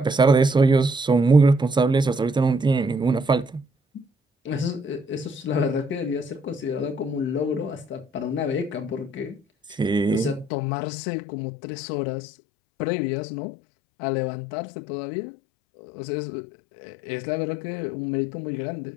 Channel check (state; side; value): drops out; right; at 10.5 s